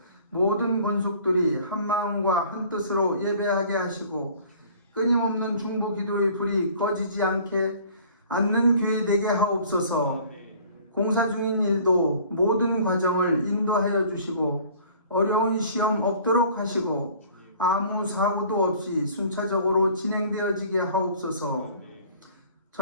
모든 권속들이 한 마음과 한 뜻으로 예배하게 하시고 끊임없는 중보 기도의 불이 꺼지지 않는 교회 되게 하옵소서. 공사 중인 일도 모든 과정을 인도하여 주시고 어려운 시험 없도록 하시고 아무 사고도 없이 순차적으로 진행되어지게 하옵소서.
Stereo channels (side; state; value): both; inverted; correlation -0.51